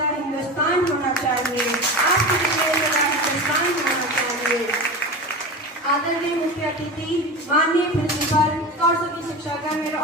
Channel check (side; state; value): both; normal; correlation 0.27